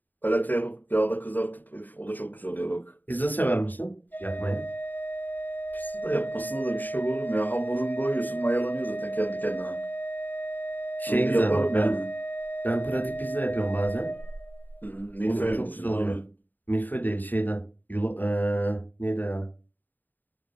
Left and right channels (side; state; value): right; late; 0.087 ms